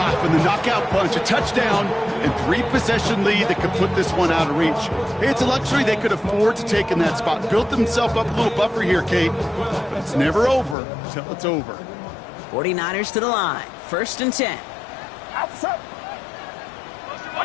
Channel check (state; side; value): drops out; right; at 10.8 s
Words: the knockout punch, a touchdown, and 3-possession lead that could put this one out of reach. Hey, it's a luxury they could afford to take in that spot. Built themselves up a little buffer here, Kate, but it's never over until it's over. 49ers to the line. First and 10. Outside.